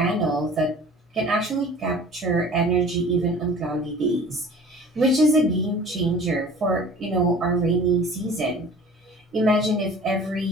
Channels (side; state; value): both; normal; correlation 0.45